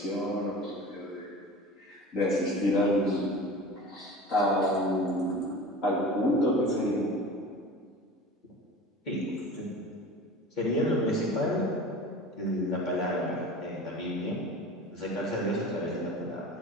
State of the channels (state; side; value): normal; both; correlation 0.37